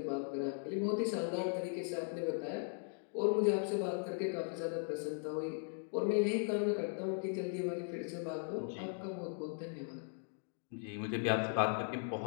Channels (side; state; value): right; silent; 52 dB below the other